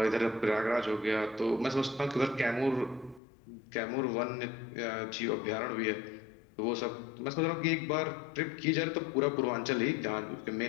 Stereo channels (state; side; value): drops out; right; at 3.2 s